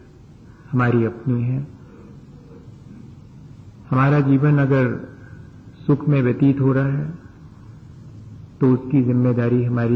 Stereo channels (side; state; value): both; identical; correlation 1.00